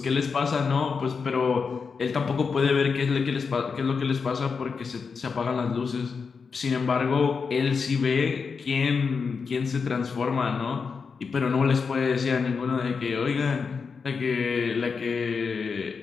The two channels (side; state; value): right; quieter; 5.4 dB